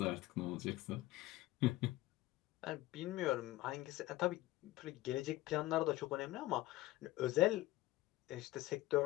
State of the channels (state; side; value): quieter; right; 17.6 dB